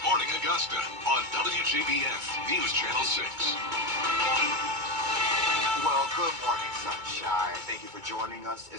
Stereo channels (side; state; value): left; late; 2.2 ms